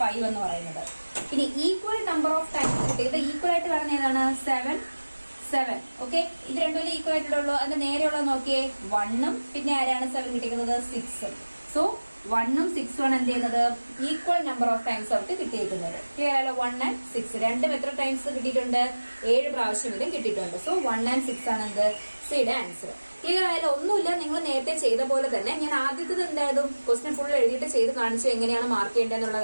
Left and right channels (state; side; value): inverted; both; correlation -1.00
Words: എന്ന് പറയുന്നത്. ഇനി ഈക്വൽ നമ്പർ ഓഫ് ടൈംസ് കിട്ടിയത് ഈക്വൽ ആയിട്ട് വരുന്ന ഏതാണ്? 7. ഓക്കെ, ഇത് രണ്ടും ഈക്വൽ ആയിട്ടുള്ളൂ. അതിന്റെ നേരെയുള്ളത് നോക്കിയേ 1ഉം പിന്നെ ആരാണ് 7 കിട്ടിയിരിക്കുന്നത്? 6ഉം. സോ 1ഉം 6ഉം ആണ് എന്ത് ചെയ്യുന്നത്? ഈക്വൽ നമ്പർ ഓഫ് ടൈംസ് അവർക്ക് കിട്ടിയിരിക്കുന്നത്. ക്ലിയർ ആയാലോ? 1 and 6 രണ്ടും എത്ര ടൈംസ് കിട്ടിയിട്ടുണ്ട്? 7 പ്രാവശ്യം ഇതും കിട്ടിയിട്ടുണ്ട്. സോ 1 and 6 ആണ് എന്ത്? സിയുടെ ആൻസർ. ക്ലിയർ ആയാലും ഒന്നുമില്ല, നിങ്ങൾ നേരത്തെ ചെയ്ത പോലെ തന്നെ ഞാൻ ആദ്യത്തെ എന്തായാലും ക്വസ്റ്റ്യൻ ഫുൾ എഴുതിയിട്ട് ചെയ്ത് കാണിച്ചു എങ്ങനെയാണ് മാർക്ക് ചെയ്യേണ്ടതെന്നുള്ള